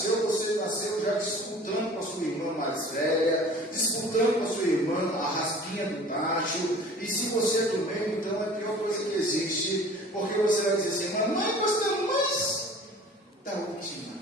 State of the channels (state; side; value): normal; both; correlation 0.45